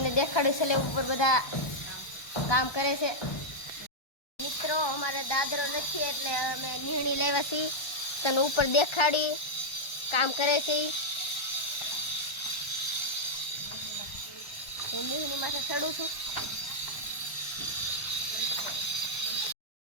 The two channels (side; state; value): right; late; 1.2 ms